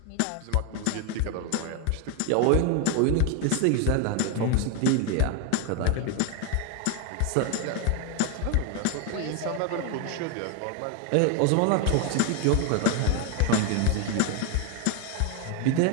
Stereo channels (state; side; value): different; both; correlation 0.01